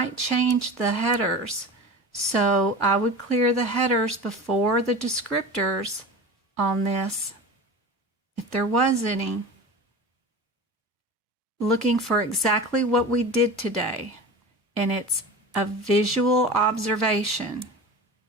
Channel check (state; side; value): normal; both; correlation 0.33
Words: change the headers. So I would clear the headers before the descriptors on this, if there was any. Looking for exactly what we did today, and it's a visual observation.